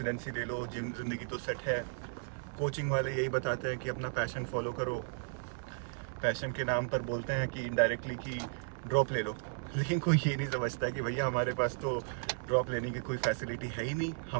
ले लो, जिम ज़िंदगी तो सेट है। कोचिंग वाले यही बताते हैं कि अपना पैशन फॉलो करो। पैशन के नाम पर बोलते हैं कि इनडायरेक्टली कि ड्रॉप ले लो, लेकिन कोई ये नहीं समझता है कि भैया हमारे पास तो ड्रॉप लेने की कोई फैसिलिटी है ही नहीं।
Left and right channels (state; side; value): silent; left; digital silence